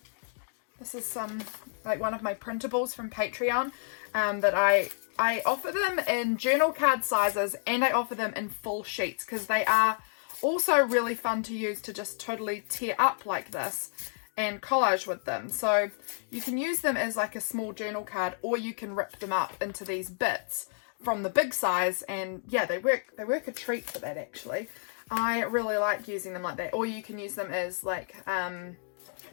This is like one of my printables from Patreon that I offer them in journal card sizes, and I offer them in full sheets because they are also really fun to use to just totally tear up like this and collage with them. So you can use them as like a small journal card, or you can rip them up into these bits from the big size, and yeah, they work a treat for that actually. I really like using them like that. Or you can use them as like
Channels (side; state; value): right; silent; digital silence